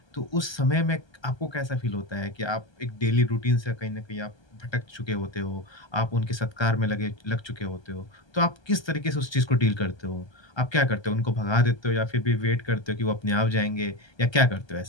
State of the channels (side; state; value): right; late; 1.3 ms